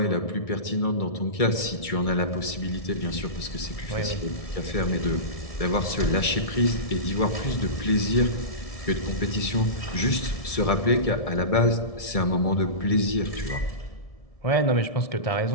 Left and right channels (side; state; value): right; late; 1.7 ms